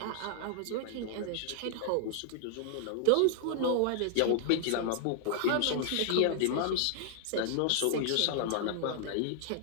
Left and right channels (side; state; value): both; different; correlation -0.01